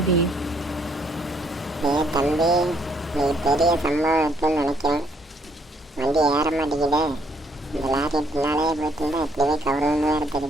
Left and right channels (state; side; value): normal; both; correlation 0.68